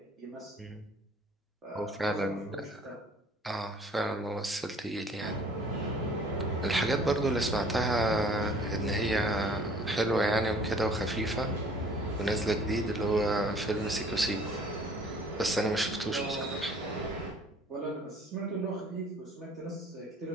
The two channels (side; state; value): both; normal; correlation 0.54